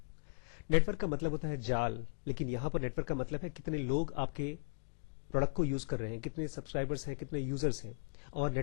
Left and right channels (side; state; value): right; silent; digital silence